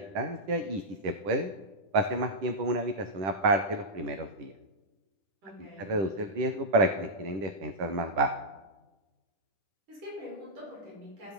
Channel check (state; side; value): late; left; 10 ms